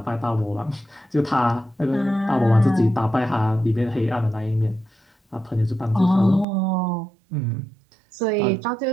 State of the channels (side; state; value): left; drops out; at 6.5 s